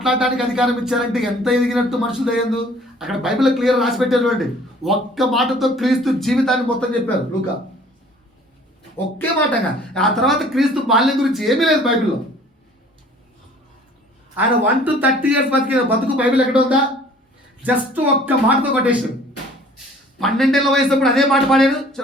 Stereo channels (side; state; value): both; normal; correlation 0.53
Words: అధికారం ఇచ్చారంటే ఎంత ఎదిగినట్టు మనుషులు దయ్యందు. అక్కడ బైబిల్ క్లియర్ రాసి పెట్టారు చూడండి. ఒక్క మాటతో క్రీస్తు జీవితాన్ని మొత్తం చెప్పారు లూకా. ఒకే మాటగా. ఆ తర్వాత క్రీస్తు బాల్యం గురించి ఏమీ లేదు బైబిల్లో. ఆయన 1 to 30 years బతికిన బతుకు బైబిల్ ఎక్కడ ఉందా? జస్ట్ ఒక్క మాటతో కొటేషన్. 12 ఏళ్ళ వయసుప్పుడు అదే మాట పాడాడు.